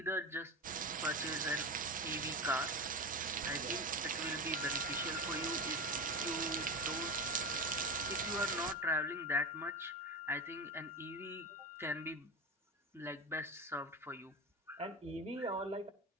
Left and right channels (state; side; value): normal; both; correlation 0.24